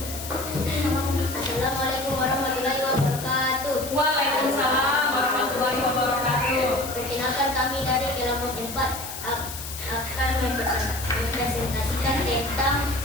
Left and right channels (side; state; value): left; noise; hiss, 9 dB below the sound